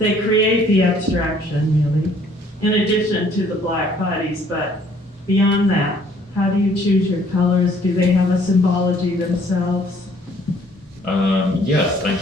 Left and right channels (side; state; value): both; normal; correlation 0.60